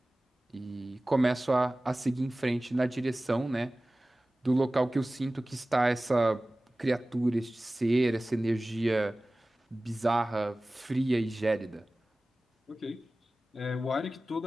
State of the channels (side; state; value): both; normal; correlation 0.97